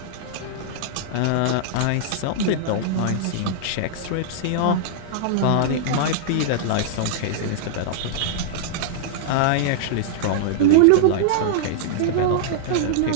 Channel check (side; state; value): both; different; correlation -0.02